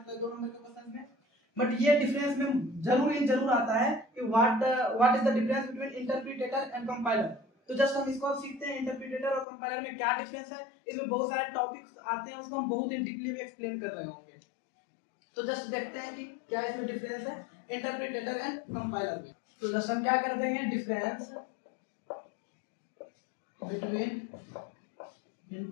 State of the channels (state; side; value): drops out; right; at 9.5 s